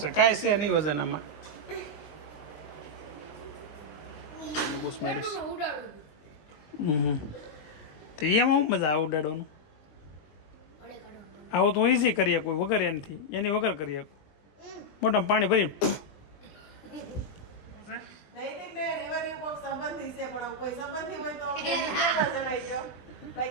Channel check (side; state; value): right; late; 20 ms